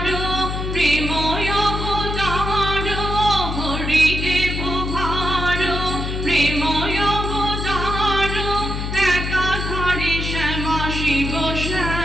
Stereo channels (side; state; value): left; noise; hum, 3 dB below the sound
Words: প্রেময় অবতার, হরিদেব ভার প্রেময় অবতার, একাধারে শ্যামা শিব